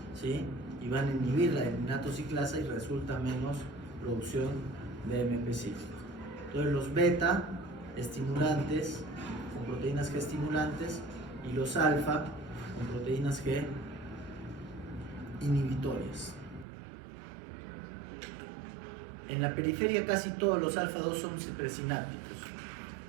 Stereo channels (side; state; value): left; drops out; at 16.7 s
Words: ¿sí? Y van a inhibir la enilatociclasa y resulta menos producción de AMP cíclico. Entonces los beta estimulantes con proteínas G estimulantes y los alfa con proteínas G inhibitorias. En la periferia casi todos los alfa 2 son presinápticos.